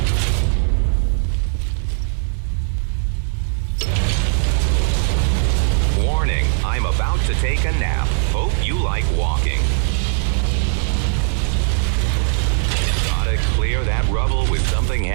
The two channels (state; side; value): silent; left; digital silence